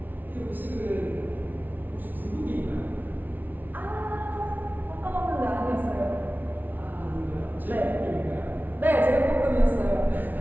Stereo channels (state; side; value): late; left; 0.085 ms